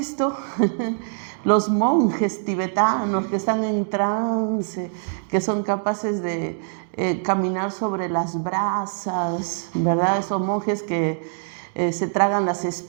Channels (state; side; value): silent; left; digital silence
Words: los monjes tibetanos que están en trance, que son capaces de caminar sobre las brasas, ¿verdad? Esos monjes que se tragan las